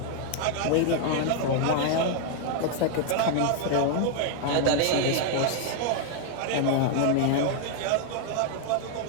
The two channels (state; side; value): different; both; correlation 0.00